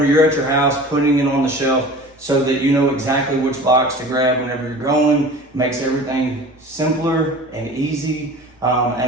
you're at your house, putting it on the shelf so that you know exactly which box to grab whenever you're going. Makes everything simpler and easy,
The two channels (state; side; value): normal; both; correlation 0.40